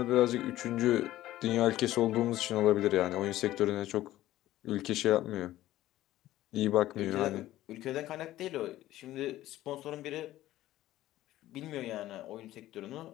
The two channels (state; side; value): quieter; right; 14.8 dB